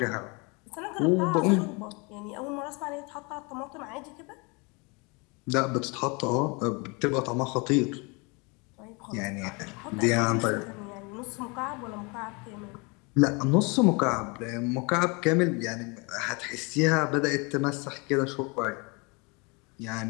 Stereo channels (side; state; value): right; quieter; 29.7 dB